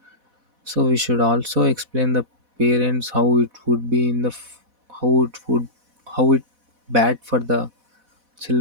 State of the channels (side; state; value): left; late; 4.1 ms